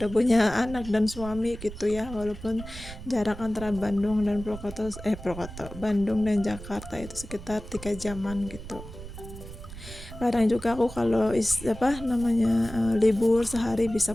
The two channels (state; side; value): noise; right; rumble, 13 dB below the sound